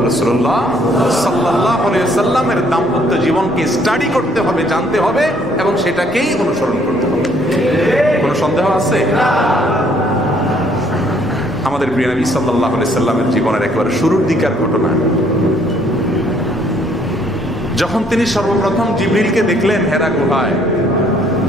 রাসূলুল্লাহ সাল্লাল্লাহু আলাইহি ওয়াসাল্লামের দাম্পত্য জীবনকে স্টাডি করতে হবে, জানতে হবে এবং সেটাকেই অনুসরণ করতে হবে। কোনো সন্দেহ আছে? আমাদের প্রিয় নবী সাল্লাল্লাহু আলাইহি ওয়াসাল্লামের জীবনের একেবারে শুরুর দিকের ঘটনা, যখন তিনি সর্বপ্রথম জিবরিলকে দেখলেন হেরা গুহায়,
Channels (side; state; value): both; normal; correlation 0.64